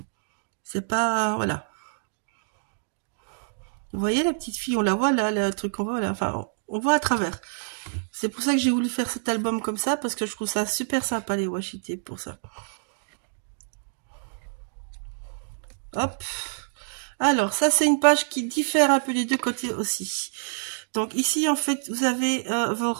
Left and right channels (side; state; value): left; silent; digital silence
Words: C'est pas... Voilà. Vous voyez la petite fille, on la voit là, le truc qu'on voit là. Enfin, on voit à travers. C'est pour ça que j'ai voulu faire cet album comme ça, parce que je trouve ça super sympa les washi tape pour ça. Hop. Alors, ça c'est une page qui diffère un peu des deux côtés aussi. Donc ici, en fait, vous avez vos